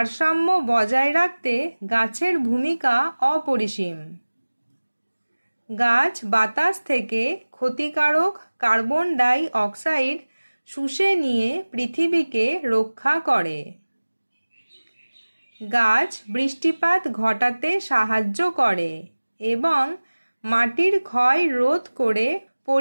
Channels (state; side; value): inverted; both; correlation -1.00